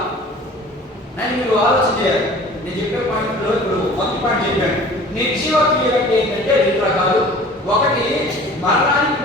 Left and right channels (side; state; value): both; normal; correlation 0.45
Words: అని మీరు ఆలోచన చేయాలి. నేను చెప్పే పాయింట్లో ఇప్పుడు మొదటి పాయింట్ చెప్పాను. నిర్జీవ క్రియలు అంటే ఏంటంటే 2 రకాలు. ఒకటి మరణానికి